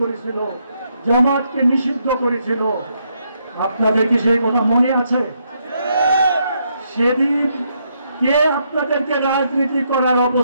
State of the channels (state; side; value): inverted; both; correlation -0.76